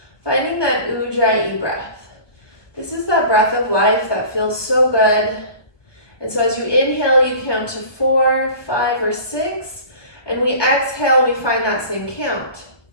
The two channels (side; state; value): right; late; 1.4 ms